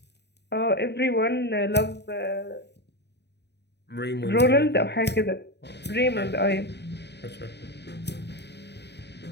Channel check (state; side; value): late; right; 0.49 ms